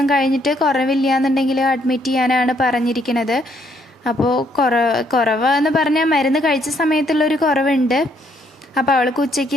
കഴിഞ്ഞിട്ട് കുറവില്ല എന്നുണ്ടെങ്കിൽ അഡ്മിറ്റ് ചെയ്യാനാണ് പറഞ്ഞിരിക്കുന്നത്. അപ്പോൾ കുറവെന്ന് പറഞ്ഞാൽ മരുന്ന് കഴിച്ച സമയത്തുള്ളൊരു കുറവുണ്ട്. അപ്പോൾ അവൾക്ക് ഉച്ചയ്ക്ക്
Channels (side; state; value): both; normal; correlation 0.70